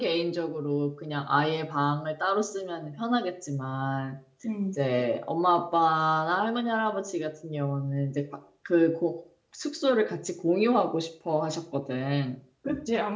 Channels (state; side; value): identical; both; correlation 1.00